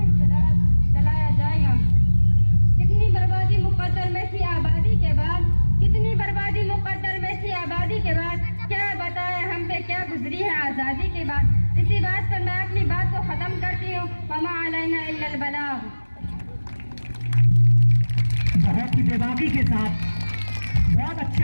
चलाया जाएगा। कितनी बर्बादी मुक़द्दर में थी आबादी के बाद, कितनी बर्बादी मुक़द्दर में थी आबादी के बाद। क्या बताएं हम पे क्या गुजरी है आज़ादी के बाद। इसी बात पर मैं अपनी बात को ख़त्म करती हूँ। वमा अलैना इल्लल बलाग। बहुत ही बेबाकी के साथ बहुत अच्छे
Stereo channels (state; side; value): inverted; both; correlation -1.00